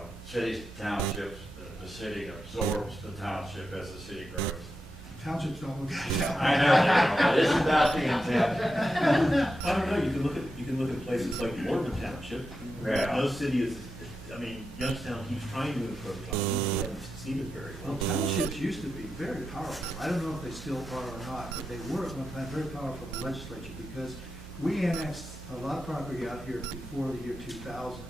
cities, townships, the city absorbs the township as the city grows? Townships don't look at it that way. I know, but isn't that the intent? I don't know, you can look at places like Mormon Township. Yeah. No city is, Youngstown keeps trying to encroach on it, they haven't succeeded very Well, well. townships used to be very powerful. I don't know if they still are or not, but they were at one time very powerful in the legislature because we annexed a lot of property out here before the year 2000.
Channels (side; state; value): both; normal; correlation 0.88